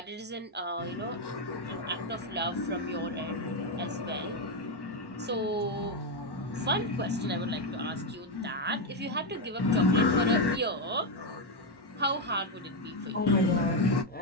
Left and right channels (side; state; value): both; normal; correlation 0.05